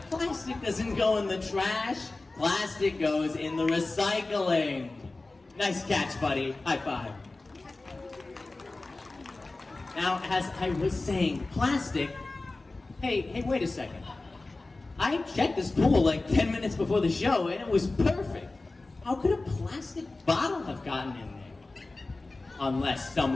Plastic doesn't go in the trash. Plastic goes in the recycling. Nice catch, buddy. High five. Now, as I was saying, plastic... Hey, wait a second. I checked this pool like 10 minutes before the show, and it was perfect. How could a plastic bottle have gotten in there? Unless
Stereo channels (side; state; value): right; quieter; 3.2 dB